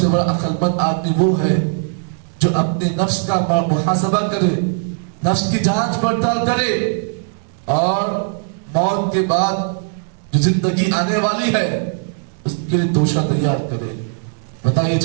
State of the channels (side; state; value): left; silent; 64 dB below the other